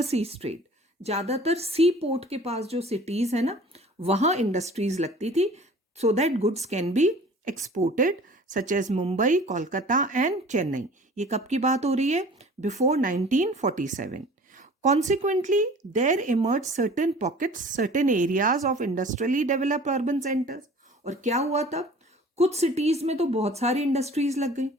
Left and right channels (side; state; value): both; normal; correlation 0.46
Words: trade. ज्यादातर सी पोर्ट के पास जो सिटीज है ना, वहां इंडस्ट्रीज लगती थी so that goods can be exported, such as Mumbai, Kolkata and Chennai. ये कब की बात हो रही है? Before 1947. Consequently, there emerged certain pockets, certain areas of industrially developed urban centers. और क्या हुआ तब? कुछ सिटीज में तो बहुत सारी इंडस्ट्रीज लग गई,